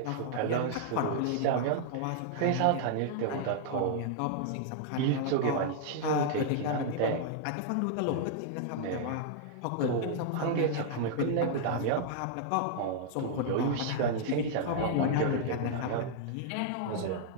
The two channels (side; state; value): both; different; correlation -0.01